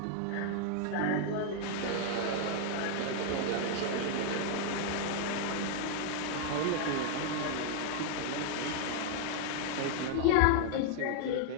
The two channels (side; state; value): both; different; correlation 0.00